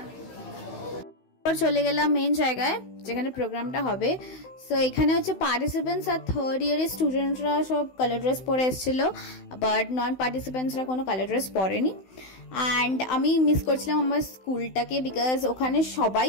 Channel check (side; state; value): right; late; 16 ms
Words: চলে গেলাম মেন জায়গায় যেখানে প্রোগ্রামটা হবে। সো এখানে হচ্ছে পার্টিসিপেন্টস আর থার্ড ইয়ারের স্টুডেন্টরা সব কালার ড্রেস পরে এসেছিল, বাট নন পার্টিসিপেন্টসরা কোনো কালার ড্রেস পরেনি। অ্যান্ড আমি মিস করছিলাম আমার স্কুলটাকে, বিকজ ওখানে সবাই